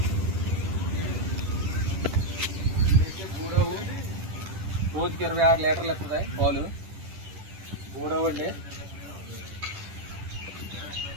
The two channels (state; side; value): late; left; 10 ms